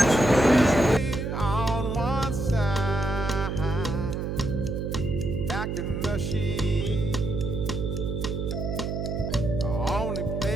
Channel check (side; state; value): right; noise; hum, 3 dB below the sound